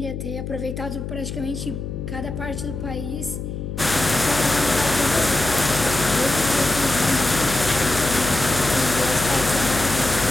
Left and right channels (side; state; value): left; noise; hum, 6 dB below the sound